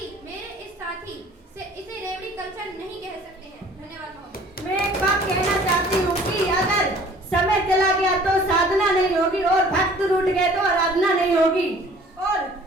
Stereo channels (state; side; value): normal; both; correlation 0.52